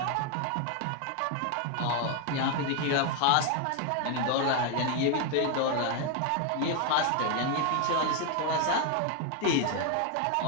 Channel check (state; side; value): different; both; correlation 0.01